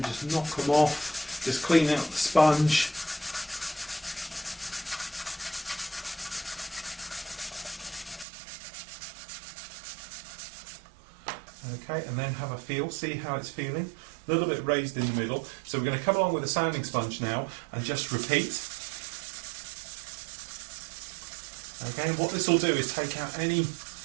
just knock them off, just clean out the sponge. Okay, and then have a feel, see how it's feeling. A little bit raised in the middle. So we're going to come along with a sanding sponge now and just repeat. Okay, what this will do is take out any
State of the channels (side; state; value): left; drops out; at 8.2 s